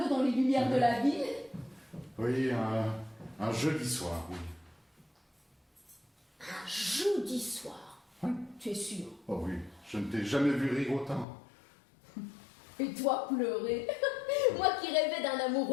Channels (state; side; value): drops out; right; at 11.2 s